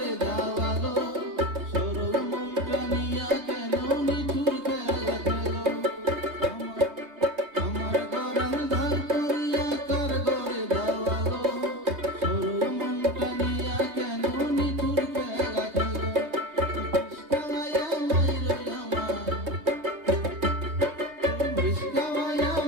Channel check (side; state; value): left; late; 3.2 ms